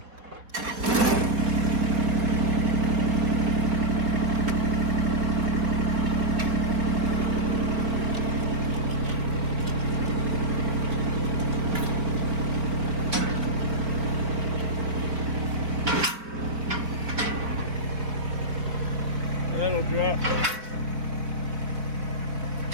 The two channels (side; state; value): left; late; 4.1 ms